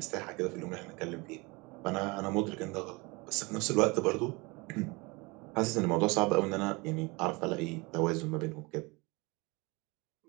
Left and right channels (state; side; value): quieter; left; 26.0 dB